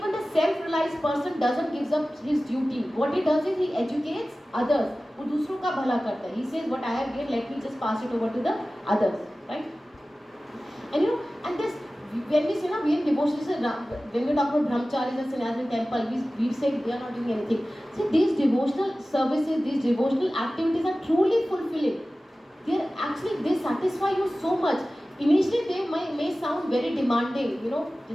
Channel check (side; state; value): both; normal; correlation 0.96